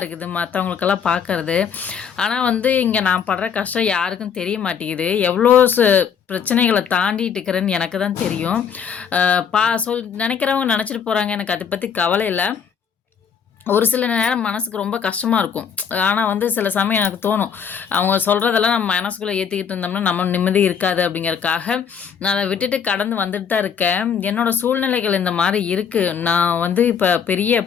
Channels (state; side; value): quieter; right; 7.2 dB